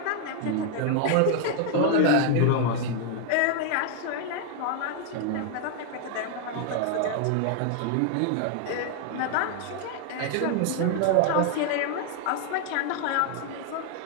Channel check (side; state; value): both; different; correlation 0.00